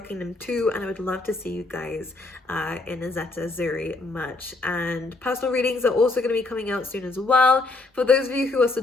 them too, and I would love to see you guys in a Zeta Zuri merch. And personal readings are also going to be coming out soon as well. For those of you who are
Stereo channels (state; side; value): quieter; right; 3.2 dB